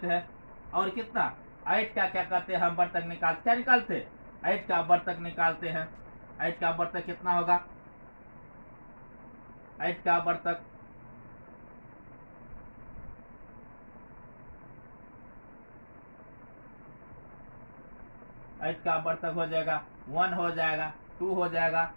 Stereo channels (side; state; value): both; inverted; correlation -1.00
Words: हैं, और कितना 8 का क्या कहते हैं हम वर्तक निकाल क्या निकालते? 8 का वर्तक निकालते हैं। 8 का वर्तक कितना होगा? 8 का वर्तक 8 का वर्तक हो जाएगा 1 हो जाएगा, 2 हो जाएगा,